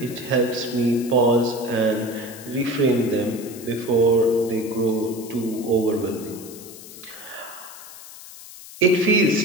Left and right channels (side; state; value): left; noise; hiss, 16 dB below the sound